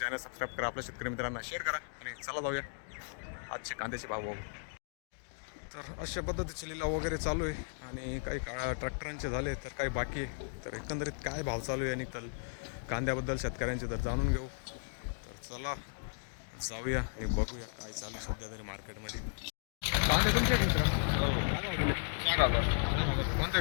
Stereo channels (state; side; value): silent; right; digital silence